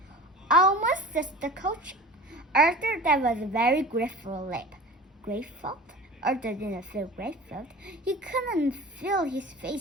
Almost, says the coach. Arthur, that was a very grateful leap. Grateful? Arthur didn't feel grateful. He couldn't feel his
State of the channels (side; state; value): both; normal; correlation 0.38